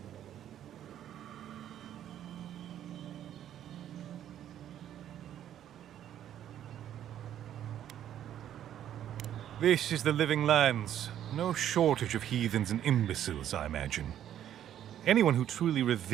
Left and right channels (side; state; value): left; quieter; 10.8 dB